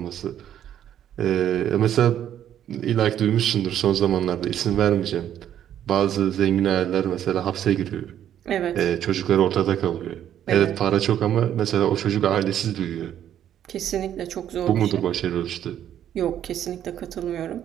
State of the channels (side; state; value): left; quieter; 10.5 dB